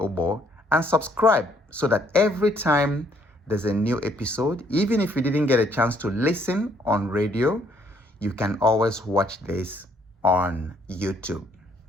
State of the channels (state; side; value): normal; both; correlation 0.66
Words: and subscribe so that every time there's a new episode, even if you didn't get a chance to listen on radio, you can always watch this on YouTube.